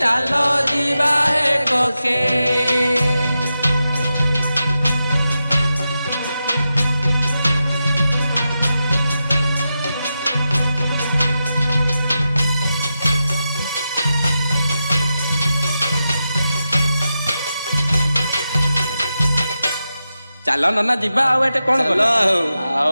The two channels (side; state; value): both; inverted; correlation -0.90